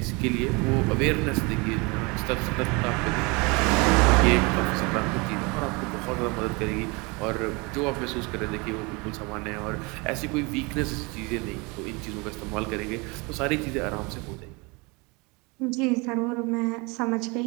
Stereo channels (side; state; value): left; quieter; 27.7 dB